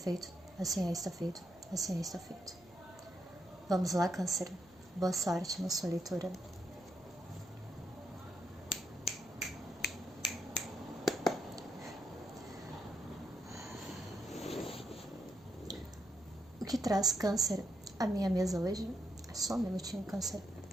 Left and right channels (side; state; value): right; noise; hum, 29 dB below the sound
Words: Assim é, está feito. Assim é, está feito. Vamos lá, Câncer. Boa sorte na sua leitura. O que traz, Câncer, a minha mesa hoje? Só um minutinho, Câncer.